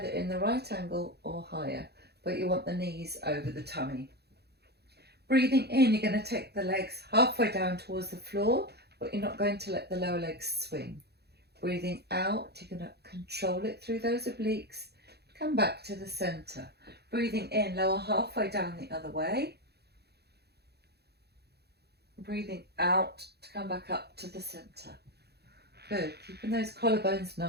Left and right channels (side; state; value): left; late; 0.48 ms